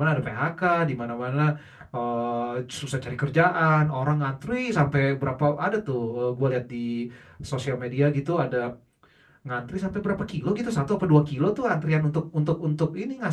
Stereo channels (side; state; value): both; identical; correlation 1.00